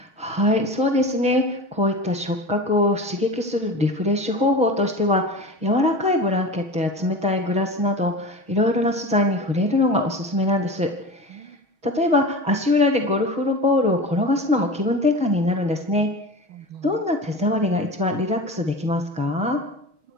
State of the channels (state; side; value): late; left; 6.3 ms